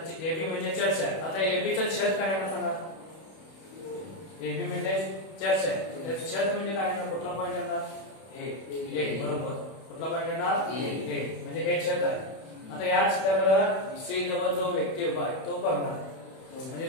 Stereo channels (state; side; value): late; right; 31 ms